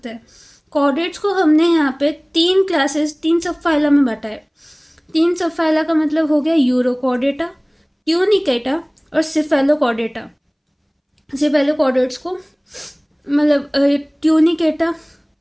है। कॉर्डेट्स को हमने यहाँ पे 3 क्लासेस, 3 सब फाइला में बांटा है। 3 सब फाइला का मतलब हो गया यूरोकॉर्डेटा, ट्यूनिकेटा और सिफेलोकॉर्डेटा। सिफेलोकॉर्डेट्स को मतलब ट्यूनिकेटा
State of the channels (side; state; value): both; identical; correlation 1.00